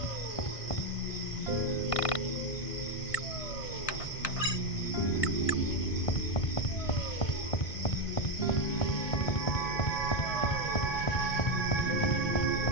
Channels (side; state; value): right; late; 1.5 ms